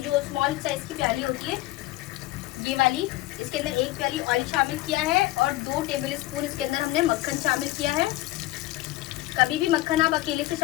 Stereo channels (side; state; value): right; quieter; 17.5 dB